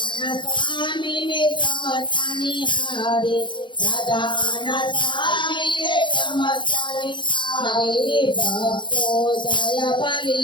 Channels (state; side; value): late; right; 0.23 ms